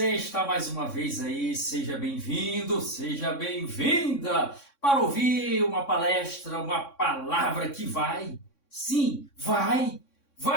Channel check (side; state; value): right; late; 3.6 ms